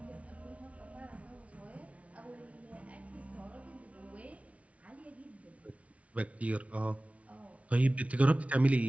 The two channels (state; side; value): late; left; 0.065 ms